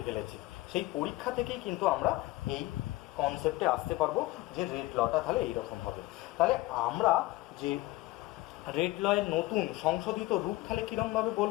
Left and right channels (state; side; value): quieter; right; 19.0 dB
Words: ফেলেছে। সেই পরীক্ষা থেকেই কিন্তু আমরা এই কনসেপ্টে আসতে পারবো যে রেট লটা তাহলে এইরকম হবে। তাহলে আমরা যে রেট লয়ের নতুন সংশোধিত রূপ তাহলে কীরকমভাবে